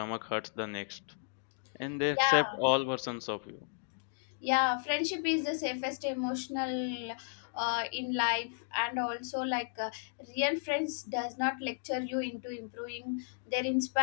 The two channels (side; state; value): right; silent; digital silence